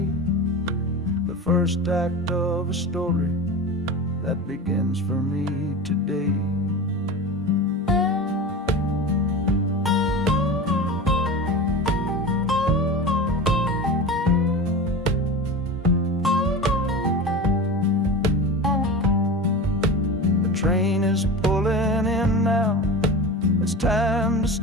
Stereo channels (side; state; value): both; normal; correlation 0.29